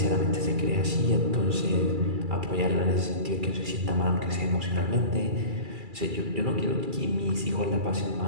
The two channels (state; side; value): late; left; 2.3 ms